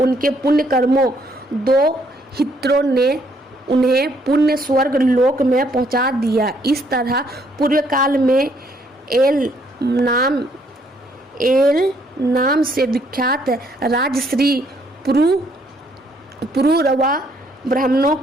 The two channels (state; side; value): normal; both; correlation 0.68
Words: पुण्य कर्मों दो हित्रों ने उन्हें पुण्य स्वर्ग लोक में पहुंचा दिया। इस तरह पूर्व काल में एल नाम से विख्यात राजश्री पुरुरवा ब्राह्मणों